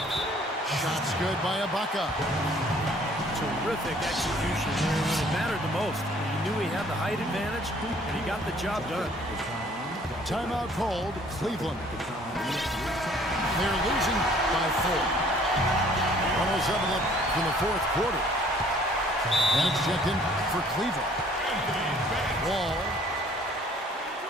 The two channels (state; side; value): normal; both; correlation 0.57